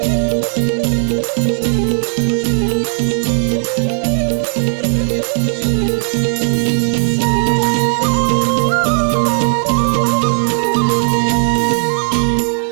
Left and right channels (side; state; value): left; silent; digital silence